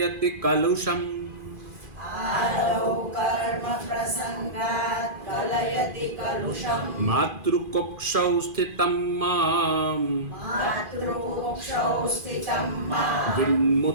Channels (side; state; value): left; late; 2.5 ms